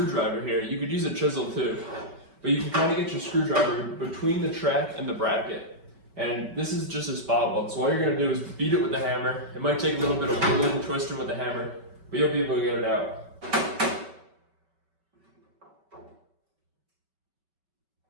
here. You could use a chisel too. But you can kind of get your screwdriver between the track and the bracket. And this is just a spot weld. So all you're going to do is beat it with the hammer. It might take a little bit of wiggling and twisting with the hammer, but you'll be able to get it out.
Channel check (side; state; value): left; late; 5.2 ms